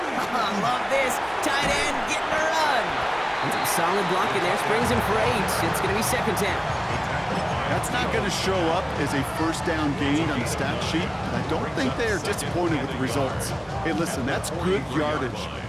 I love this. Tight end getting a run. And some solid blocking there. Springs him for 8. It's going to be 2nd down. That's not going to show up as a 1st down gain on the stat sheet, but I don't think they are disappointed with the results. Hey, listen, that's good yardage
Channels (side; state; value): both; identical; correlation 1.00